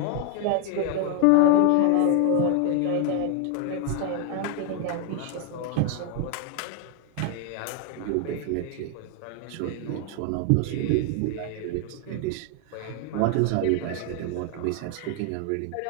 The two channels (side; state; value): both; different; correlation 0.00